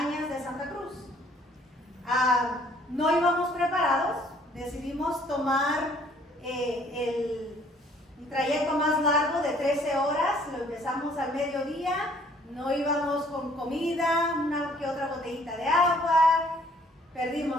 de Santa Cruz. No íbamos preparados, decidimos tomar un trayecto más largo de 13 horas, lo empezamos al mediodía, no íbamos con comida, una que otra botellita de agua,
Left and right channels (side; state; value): both; normal; correlation 0.60